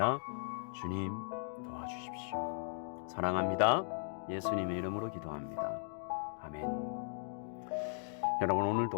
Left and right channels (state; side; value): silent; right; digital silence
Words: 주님, 도와주십시오. 사랑합니다. 예수님의 이름으로 기도합니다. 아멘. 여러분,